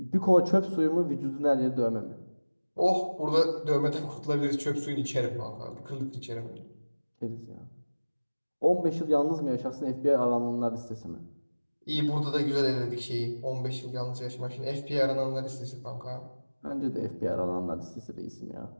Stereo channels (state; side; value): inverted; both; correlation -1.00